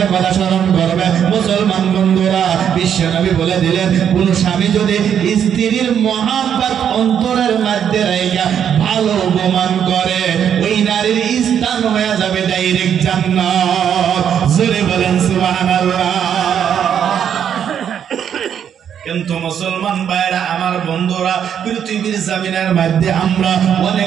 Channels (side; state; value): left; quieter; 8.7 dB